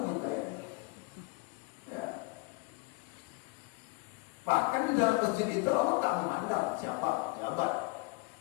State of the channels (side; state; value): right; quieter; 26.4 dB